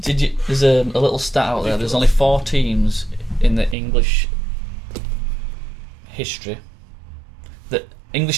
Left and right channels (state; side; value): drops out; left; at 3.8 s